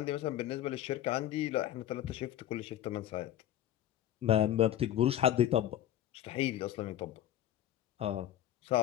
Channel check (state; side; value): quieter; right; 11.9 dB